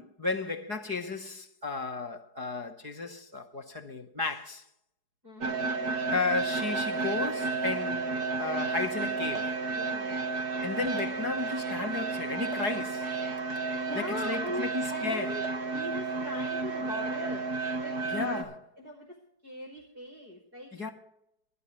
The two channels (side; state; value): left; late; 4.7 ms